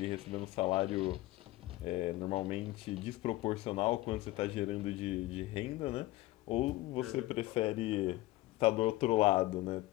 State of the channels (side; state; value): right; quieter; 17.9 dB